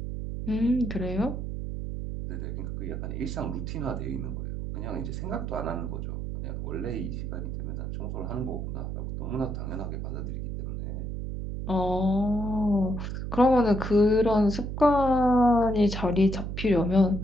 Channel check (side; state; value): right; noise; hum, 4 dB below the sound